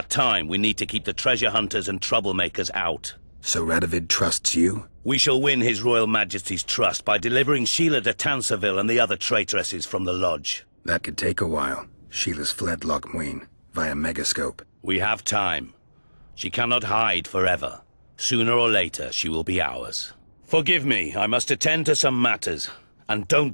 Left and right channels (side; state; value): both; inverted; correlation -1.00